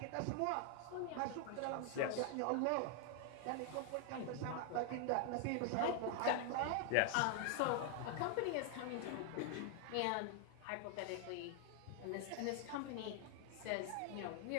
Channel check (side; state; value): both; different; correlation 0.00